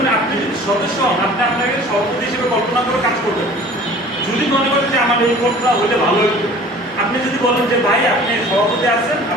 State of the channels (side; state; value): both; normal; correlation 0.46